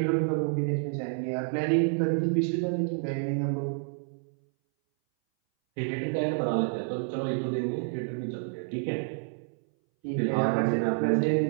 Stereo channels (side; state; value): left; silent; 59 dB below the other